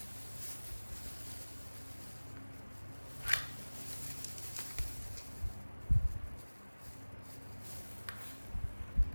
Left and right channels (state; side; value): inverted; both; correlation -1.00